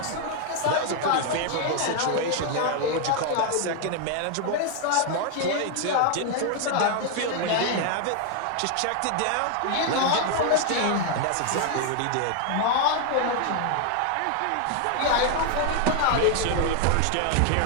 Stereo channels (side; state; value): both; different; correlation 0.00